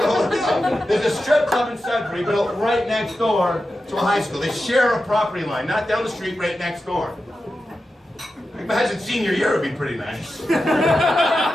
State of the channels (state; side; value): normal; both; correlation 0.91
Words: There's a strip club in Sudbury built right next door to a high school. They share a property line, not down the street, right next door. Imagine senior year would be pretty nice.